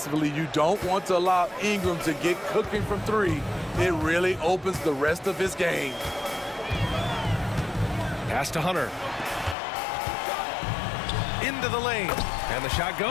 you don't want to allow Ingram to get cooking from 3. It really opens the rest of his game. Pass to Hunter. Into the lane. And the shot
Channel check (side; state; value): right; drops out; at 9.6 s